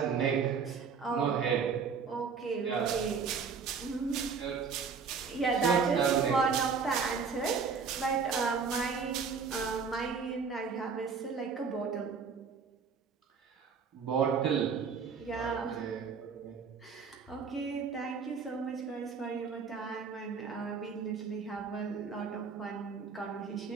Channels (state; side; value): quieter; left; 5.7 dB